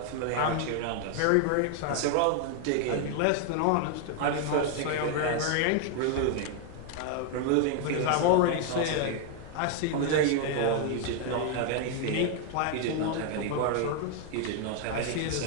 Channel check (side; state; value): both; different; correlation 0.00